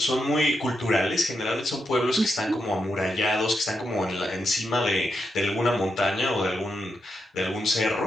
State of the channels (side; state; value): both; normal; correlation 0.84